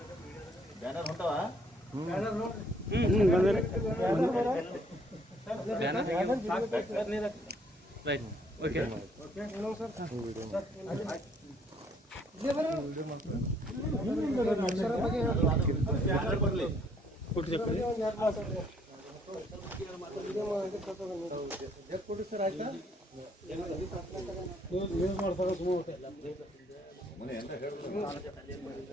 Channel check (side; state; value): both; normal; correlation 0.65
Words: ಬ್ಯಾನರ್ ಹೊಂಟವ ರೈಟ್ ಓಕೆ ಸರ್ ಆಯ್ತಾ ಯೂಸ್ ಮಾಡ್ತಾರೆ